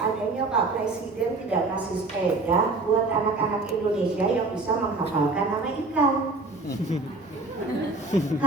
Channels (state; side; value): quieter; left; 3.5 dB